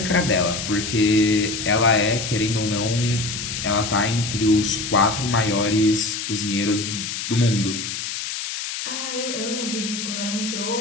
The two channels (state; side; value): noise; left; hiss, 5 dB below the sound